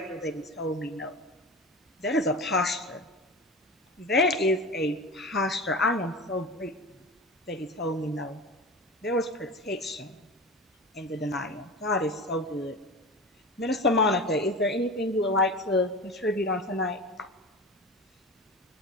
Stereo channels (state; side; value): normal; both; correlation 0.30